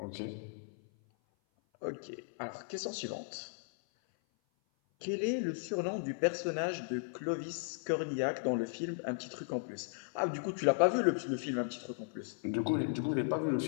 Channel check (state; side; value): silent; right; 54 dB below the other